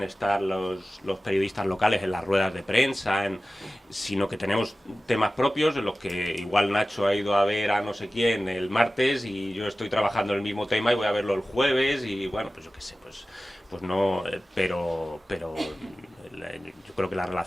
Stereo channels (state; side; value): normal; both; correlation 0.96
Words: estar los periodistas locales en las ruedas de prensa, sino que tenemos temas propios en los que igual Nacho ha ido a ver a no sé quién el martes y yo estoy trabajando en el mismo tema y voy a verlo el jueves y bueno, pues yo qué sé, pues no, pero yo creo que la